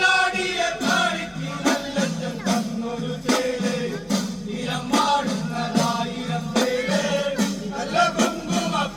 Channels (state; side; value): identical; both; correlation 1.00